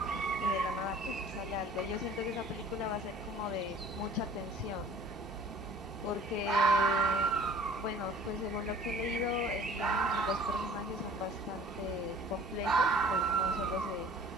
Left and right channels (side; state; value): both; normal; correlation 0.49